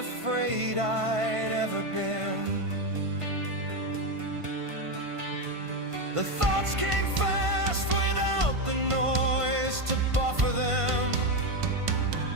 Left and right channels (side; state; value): left; late; 1.5 ms